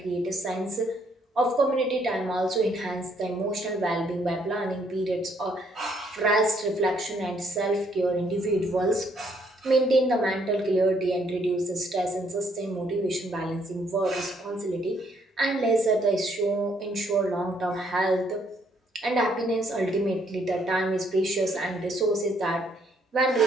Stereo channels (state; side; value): normal; both; correlation 0.69